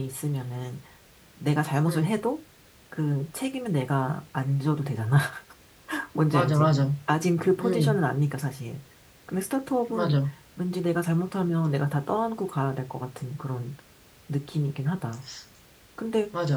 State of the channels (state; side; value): identical; both; correlation 1.00